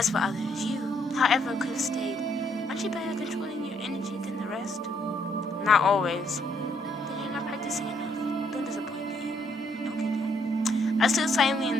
for others. You, however, could have stayed. Aren't you better at controlling your energy than the rest? Not always. Then you're not practicing enough. Don't disappoint me. Okay, Dad. I stood silently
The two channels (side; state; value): both; normal; correlation 0.71